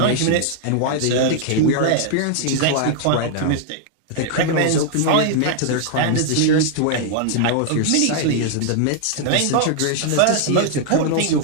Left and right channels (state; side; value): different; both; correlation 0.00